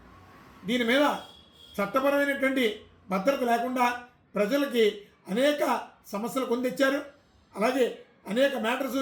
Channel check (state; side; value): identical; both; correlation 1.00